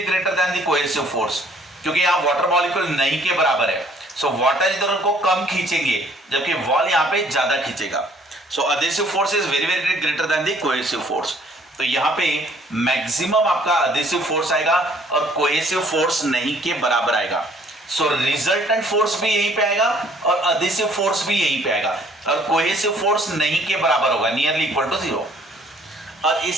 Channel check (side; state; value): both; normal; correlation 0.59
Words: greater than the cohesive force, क्योंकि यहाँ वाटर मॉलिक्यूल नहीं के बराबर है। सो वाटर इधर उनको कम खींचेंगे जबकि वॉल यहाँ पे ज्यादा खींचेगा। सो adhesive force is very very greater than the cohesive force। तो यहाँ पे मैक्सिमम आपका adhesive force आएगा और cohesive force नहीं के बराबर आएगा। सो रिजल्टेंट फोर्स भी यहीं पे आएगा और adhesive force भी यहीं पे आएगा, और cohesive force नहीं के बराबर होगा, नियरली इक्वल टू 0। और